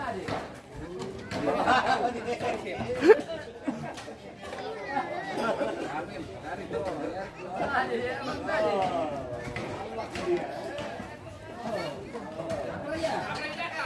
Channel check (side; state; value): both; identical; correlation 1.00